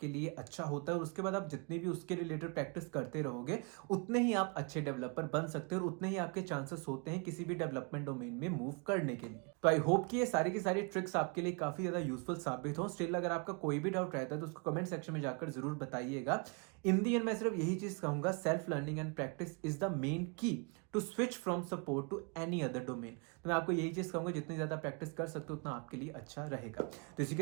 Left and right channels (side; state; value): left; quieter; 33.8 dB